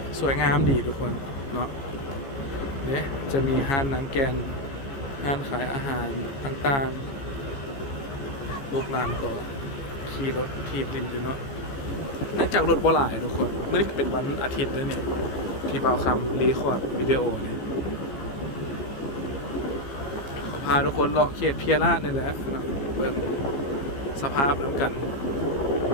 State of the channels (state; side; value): late; right; 15 ms